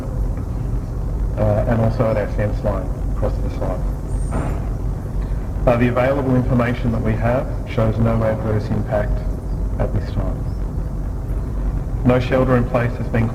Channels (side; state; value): both; identical; correlation 1.00